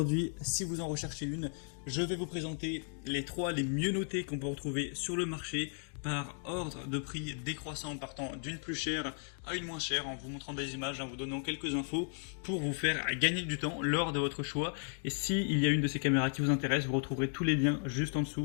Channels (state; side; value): silent; right; 54 dB below the other